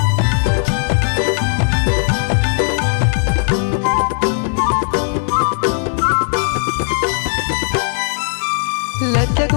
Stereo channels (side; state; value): right; silent; 58 dB below the other